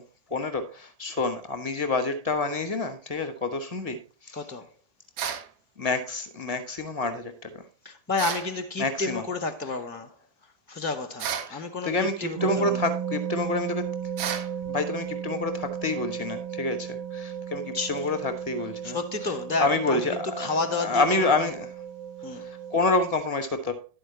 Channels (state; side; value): late; left; 1.8 ms